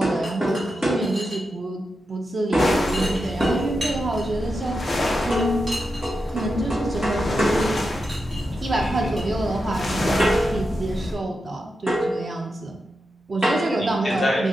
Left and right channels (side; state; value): both; normal; correlation 0.88